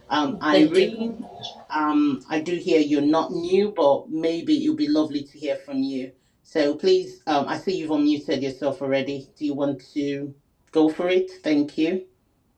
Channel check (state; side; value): identical; both; correlation 1.00